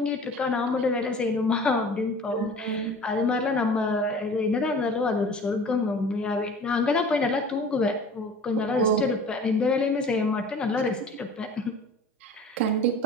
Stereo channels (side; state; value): both; normal; correlation 0.43